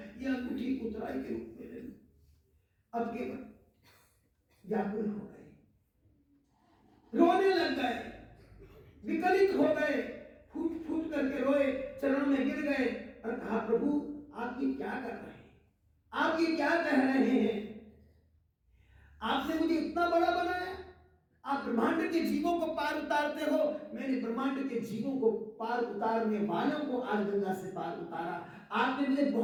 ये अंगूठी उतराई के रूप में ले लो। अब केवट व्याकुल हो गए, रोने लग गए, विकलित हो गए, फूट फूट करके रोए, चरणों में गिर गए और कहा प्रभु आप ये क्या कर रहे हैं, आप ये क्या कह रहे हैं? आपने मुझे इतना बड़ा बनाया, आप ब्रह्मांड के जीवों को पार उतारते हो, मैंने ब्रह्मांड के जीवों को पार उतारने वालों को आज गंगा से पार उतारा। आपने मुझे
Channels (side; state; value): both; identical; correlation 1.00